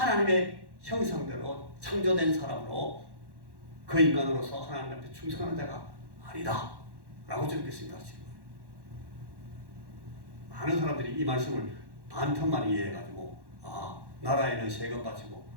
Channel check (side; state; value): left; late; 1.1 ms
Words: 형상대로 창조된 사람으로 그 인간으로서 하나님 앞에 충성하는 자가 아니다 라고 주님께서 말씀하시는 거예요. 많은 사람들이 이 말씀을 반편만 이해해가지고 나라에는 세금 바치고